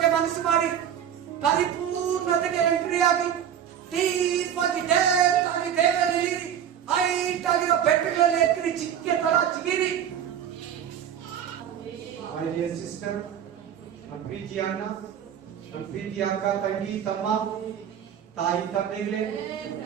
ಮನಸ್ಸು ಮಾಡಿ ಪರಿಪೂರ್ಣತೆಗೆ ಎಂಟ್ರಿ ಆಗಿ ಡೀಪ್ ಆಗಿ ಡೇಪ್ ಆಗಿ ದೇವರಲ್ಲಿ ಹೈಟ್ ಆಗಿರೋ ಬೆಟ್ಟಗಳಲ್ಲಿ ಎತ್ತಿರಿ, ಚಿಕ್ಕೆ ತರ ಚಿಗಿರಿ. My dear sister, ನಮ್ಮ ಪ್ರೀತಿಯ ಅಣ್ಣ, ನಮ್ಮ ಪ್ರೀತಿಯ ಅಕ್ಕ, ತಂಗಿ, ತಮ್ಮ, ತಾಯಿ, ತಂದೆಗಳೇ,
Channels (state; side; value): quieter; left; 9.3 dB